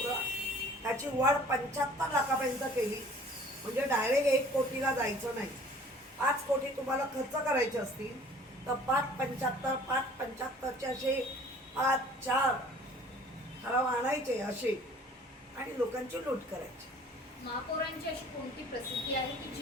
त्याची वाढ 75 लाखापर्यंत केली. म्हणजे डायरेक्ट 1 कोटीला जायचं नाही. 5 कोटी तुम्हाला खर्च करायचे असतील तर 5.75 5.75चे असे 5-4 ठराव आणायचे असे आणि लोकांची लूट करायची. महापौरांची अशी कोणती प्रसिद्धी आहे की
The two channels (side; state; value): both; normal; correlation 0.51